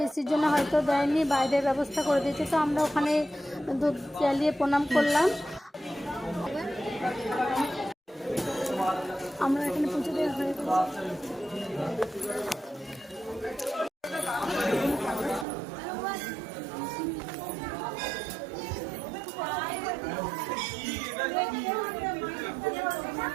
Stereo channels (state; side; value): drops out; left; at 15.5 s